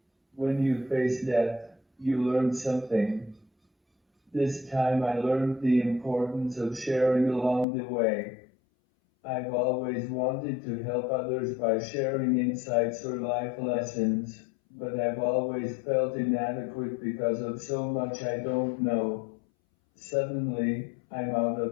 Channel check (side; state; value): right; drops out; at 7.7 s